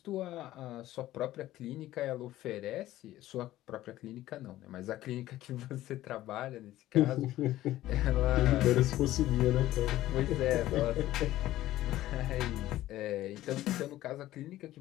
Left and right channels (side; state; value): right; quieter; 14.9 dB